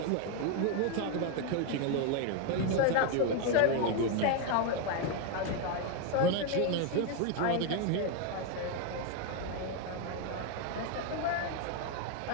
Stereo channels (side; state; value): both; different; correlation 0.02